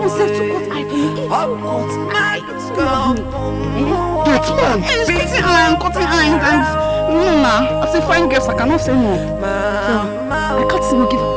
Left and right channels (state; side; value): identical; both; correlation 1.00